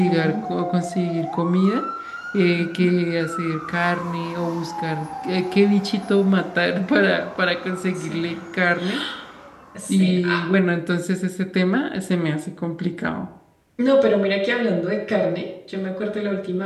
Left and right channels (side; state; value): both; identical; correlation 1.00